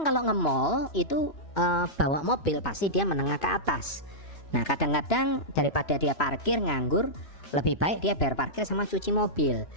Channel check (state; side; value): late; right; 2.9 ms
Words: kalau nge-mall itu bawa mobil pasti dia menengah ke atas. Nah kadang-kadang daripada dia parkir nganggur, lebih baik dia bayar parkir sama cuci mobil.